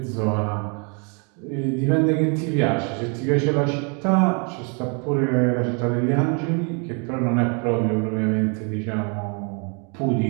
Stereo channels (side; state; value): left; quieter; 36.1 dB